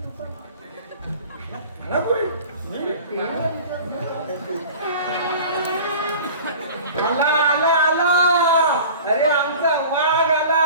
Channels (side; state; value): both; inverted; correlation -0.40